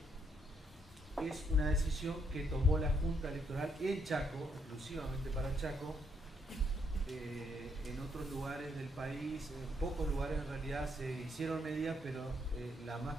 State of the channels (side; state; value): both; normal; correlation 0.74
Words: es una decisión que tomó la Junta Electoral en Chaco, exclusivamente para Chaco. En otros lugares del país, en pocos lugares en realidad se hicieron medidas, pero la más